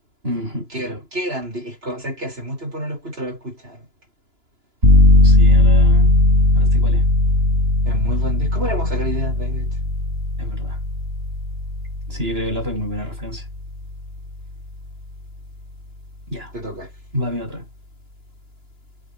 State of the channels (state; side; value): late; left; 2.9 ms